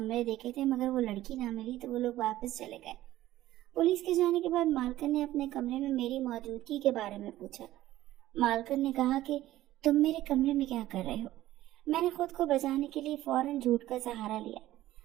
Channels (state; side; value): quieter; left; 14.9 dB